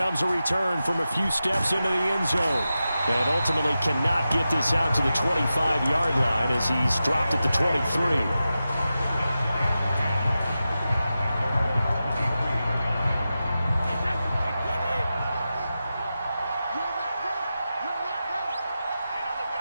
a return from a few steps into the end zone. And ultimately cannot get this out to the 25-yard line as he's dropped at the 23.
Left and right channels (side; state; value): both; inverted; correlation -0.92